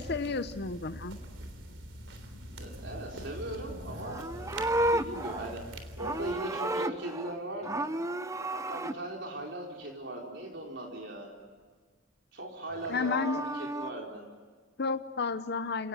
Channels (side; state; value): both; normal; correlation 0.28